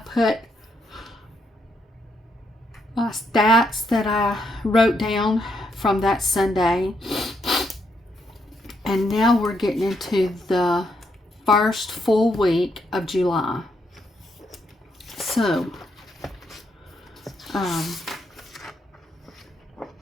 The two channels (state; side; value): normal; both; correlation 0.77